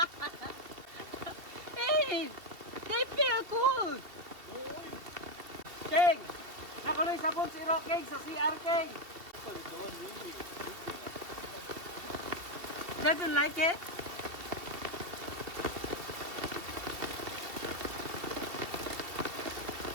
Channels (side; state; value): left; late; 2.7 ms